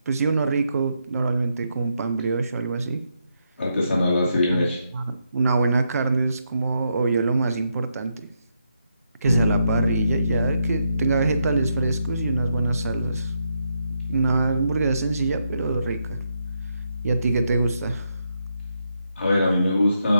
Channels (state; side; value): inverted; both; correlation -0.81